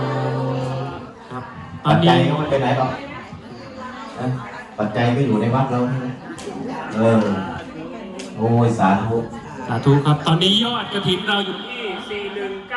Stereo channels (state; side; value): identical; both; correlation 1.00